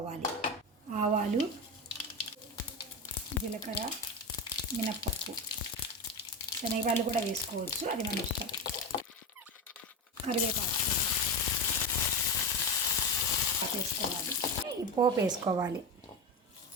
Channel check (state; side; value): normal; both; correlation 0.19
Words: ఆవాలు, జీలకర్ర, మినప్పప్పు, శనగలు కూడా వేసుకోవచ్చు, అది మన ఇష్టం. కరివేపాకు వేసుకోవాలి. ఈ పోపు వేసుకోవాలి.